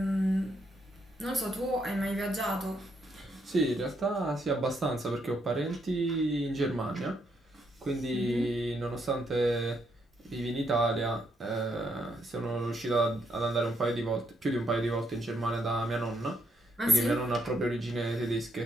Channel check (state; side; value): normal; both; correlation 0.76